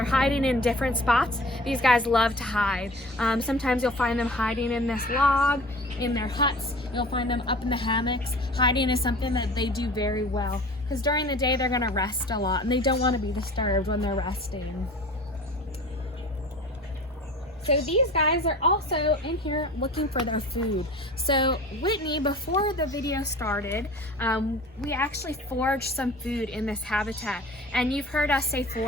hiding in different spots. These guys love to hide. Sometimes you'll find them hiding in this log, in their huts. You'll find them up in the hammocks. Hiding is something that they do very well because during the day they're gonna rest a lot and they don't want to be disturbed when they're resting. So these guys are also in here looking for their food. So Whitney, before the video started, we actually foraged some food in this habitat. And you've heard us say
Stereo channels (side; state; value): both; normal; correlation 0.42